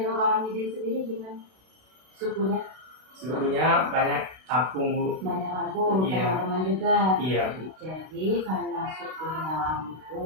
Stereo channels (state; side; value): late; left; 32 ms